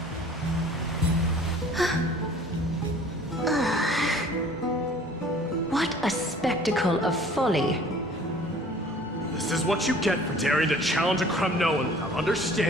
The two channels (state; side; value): normal; both; correlation 0.50